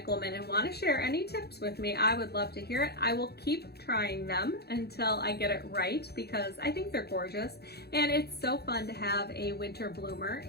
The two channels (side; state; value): right; late; 0.47 ms